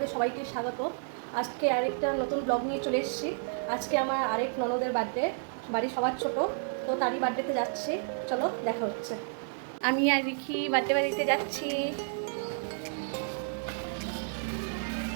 সবাইকে স্বাগত। আজকে আরেকটা নতুন ব্লগ নিয়ে চলে এসেছি। আজকে আমার আরেক ননদের বার্থডে, বাড়ি সবার ছোট, তো তারই বার্থডেতে যাচ্ছি। চলো দেখা হচ্ছে। আমি আর রিখি বার্থডে বাড়িতে যাচ্ছি।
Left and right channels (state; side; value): silent; left; digital silence